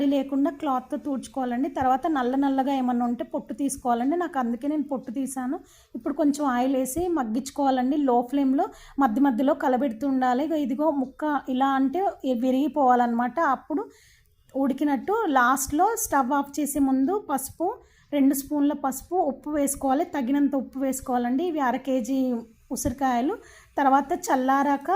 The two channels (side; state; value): both; identical; correlation 1.00